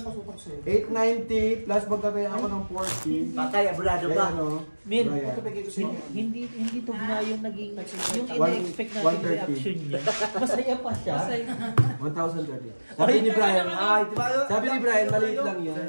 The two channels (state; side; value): inverted; both; correlation -1.00